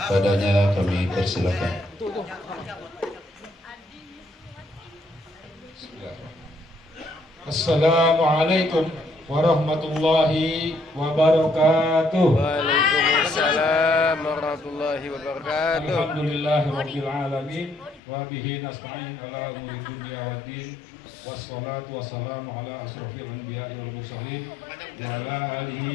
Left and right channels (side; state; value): right; drops out; at 18.0 s